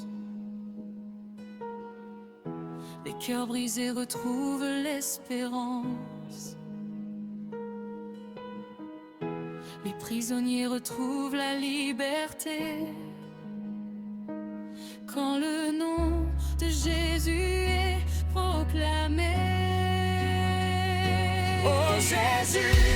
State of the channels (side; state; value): both; identical; correlation 1.00